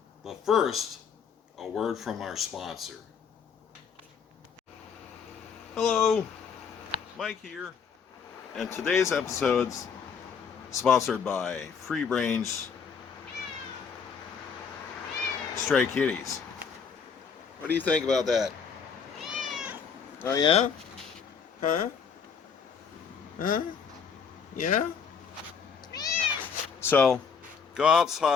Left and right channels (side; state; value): right; quieter; 6.3 dB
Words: But first, a word from our sponsor. Hello, Mike here, and today's episode's sponsored by Free Range Stray Kitties. What do you think about that? Oh yeah? Huh? Huh? Yeah? So, go